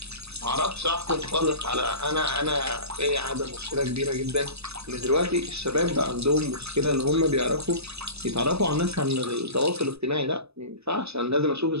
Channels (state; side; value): late; left; 0.79 ms